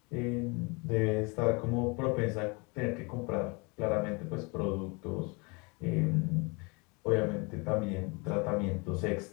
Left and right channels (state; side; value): quieter; right; 29.8 dB